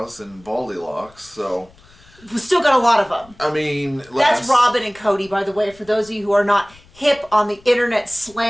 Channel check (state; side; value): noise; left; rumble, 27 dB below the sound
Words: and baldy locks, so... We still got a lot of them. I mean... That's Robin and Cody, by the way, for those of you who are not hip on the internet